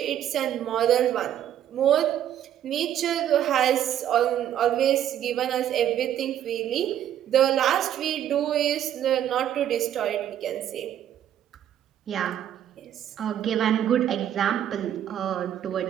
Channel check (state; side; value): quieter; left; 10.7 dB